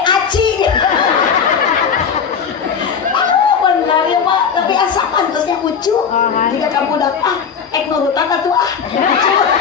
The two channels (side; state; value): right; quieter; 6.7 dB